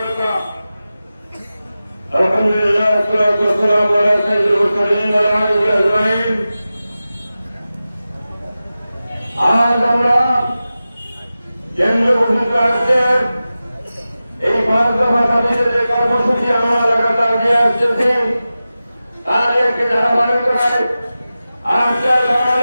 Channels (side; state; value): both; inverted; correlation -0.95